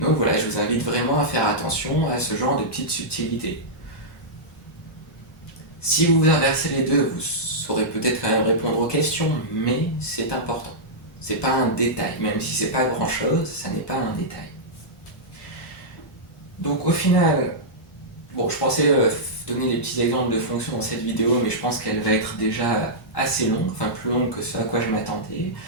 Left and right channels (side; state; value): both; normal; correlation -0.12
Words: voilà, je vous invite vraiment à faire attention à ce genre de petites subtilités. Si vous inversez les deux, vous saurez peut-être quand même répondre aux questions, mais c'est important. C'est pas un détail, même si c'est pas grand-chose, ça n'est pas un détail. Donc au final, bon, je pensais donner des petits exemples de fonctions dans cette vidéo, mais je pense qu'elle va être déjà assez longue, enfin plus longue que ce à quoi je m'attendais.